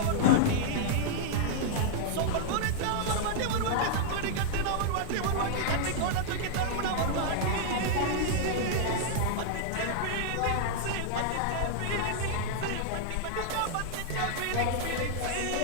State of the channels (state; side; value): different; both; correlation -0.01